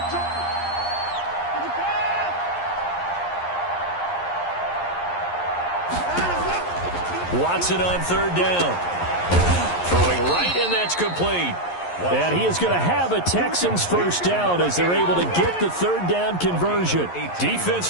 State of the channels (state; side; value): late; right; 11 ms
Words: Watson on 3rd down. Throwing right, and that's complete. And he is going to have a Texans first down as they're able to get the 3rd down conversion.